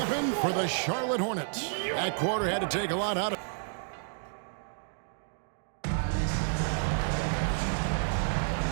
for the Charlotte Hornets. That quarter had to take a lot out of it.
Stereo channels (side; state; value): left; silent; digital silence